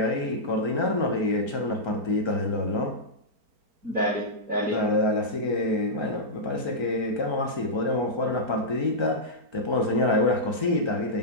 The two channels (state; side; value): late; left; 4.4 ms